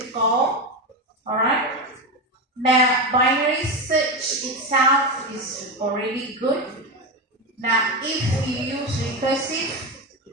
call. Alright. Now, binary search itself is already good. Now, if you use recursive,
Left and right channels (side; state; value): both; normal; correlation 0.16